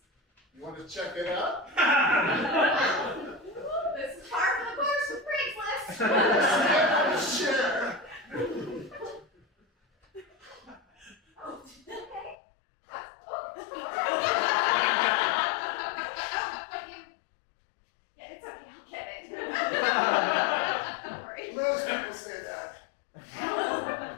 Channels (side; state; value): right; drops out; at 12.4 s